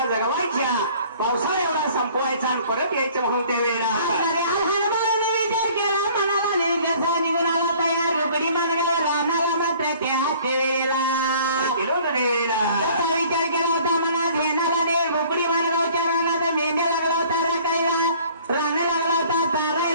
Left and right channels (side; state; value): both; inverted; correlation -0.53